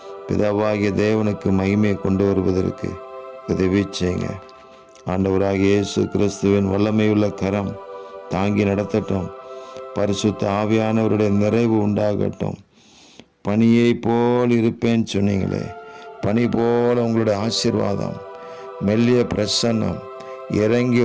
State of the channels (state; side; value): identical; both; correlation 1.00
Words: பிதாவாகிய தேவனுக்கு மகிமையை கொண்டு வருவதற்கு உதவி செய்யுங்க. ஆண்டவராகிய இயேசு கிறிஸ்துவின் வல்லமையுள்ள கரம் தாங்கி நடத்தட்டும். பரிசுத்த ஆவியானவருடைய நிறைவு உண்டாகட்டும். பனியை போல் இருப்பேன்னு சொன்னீங்களே, பனி போல உங்களுடைய ஆசீர்வாதம், மெல்லிய பிரசன்னம் இறங்கி